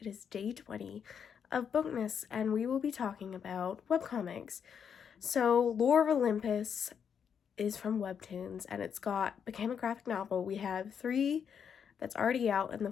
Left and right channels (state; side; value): quieter; right; 7.5 dB